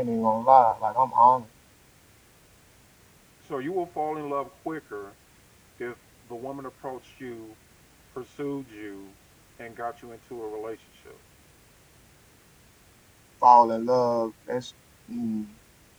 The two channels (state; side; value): identical; both; correlation 1.00